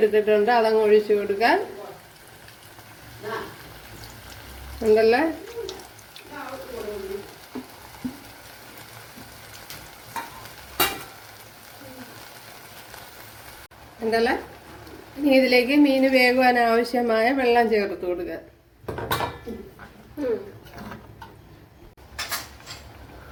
അതങ്ങ് ഒഴിച്ചു കൊടുക്കാൻ, ഉണ്ടല്ലേ. ഉണ്ടല്ലേ. ഇനി ഇതിലേക്ക് മീൻ വേകുവാൻ ആവശ്യമായ വെള്ളം ചേർത്ത് കൊടുക്കുക.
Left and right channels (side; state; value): both; identical; correlation 1.00